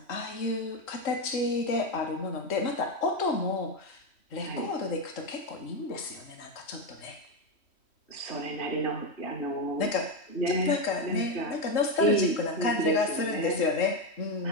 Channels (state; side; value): late; right; 3.1 ms